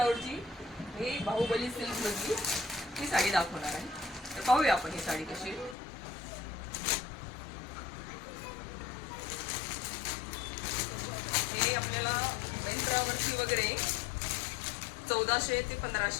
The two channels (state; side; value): drops out; right; at 5.8 s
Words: हे बाहुबली सिल्क मधली ही साडी दाखवणार आहे। तर पाहूया आपण ही साडी कशी। हे आपल्याला मेंट्रावरती वगैरे 1400 ते